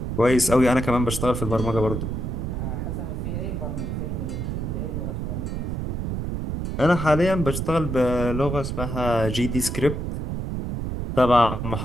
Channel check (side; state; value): right; noise; rumble, 3 dB below the sound